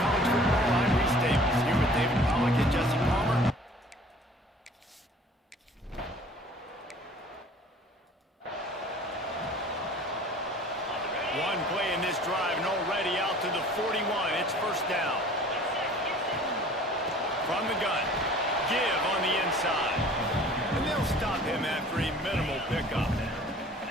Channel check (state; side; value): normal; both; correlation 0.49